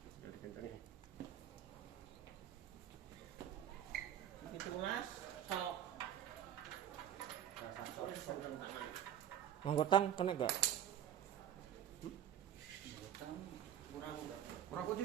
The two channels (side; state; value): left; quieter; 10.5 dB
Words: Wis dikencengi. 17 sok. Rasa sok. Wis seneng tangan. Anggotang kena gak? Utang Kurang udah. Kurang kunci